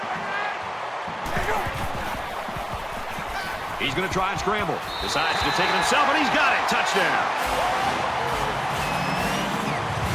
He's going to try and scramble. Decides to take it himself, and he's got it. Touchdown.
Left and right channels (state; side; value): identical; both; correlation 1.00